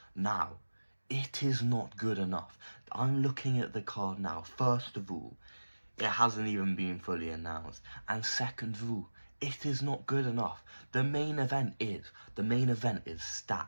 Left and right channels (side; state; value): both; inverted; correlation -1.00